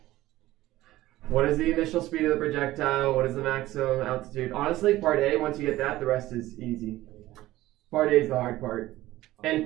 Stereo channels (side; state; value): left; quieter; 16.3 dB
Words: What is the initial speed of the projectile? What is the maximum altitude? Honestly, part A, once you get that, the rest is easy. Part A is the hard part. And